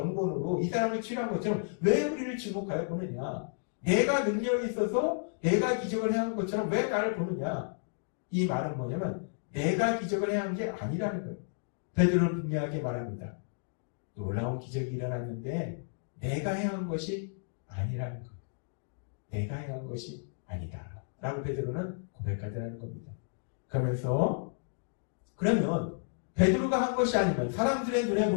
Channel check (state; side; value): silent; right; digital silence